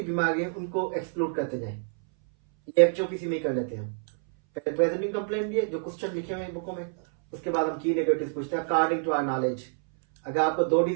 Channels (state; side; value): silent; left; 60 dB below the other